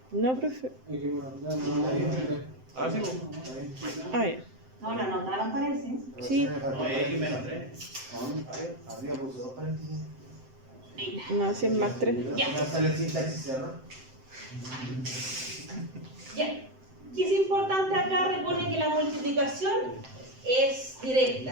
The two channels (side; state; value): left; late; 7.8 ms